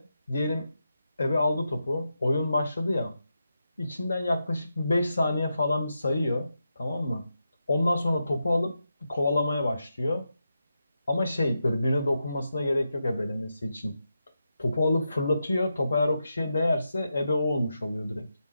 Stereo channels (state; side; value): inverted; both; correlation -0.87